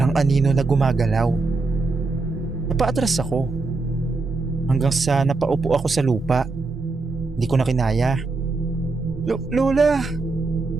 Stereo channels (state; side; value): quieter; left; 3.7 dB